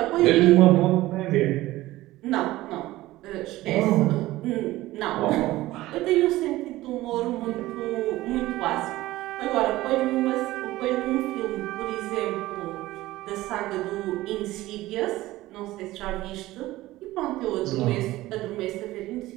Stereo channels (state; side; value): quieter; left; 17.2 dB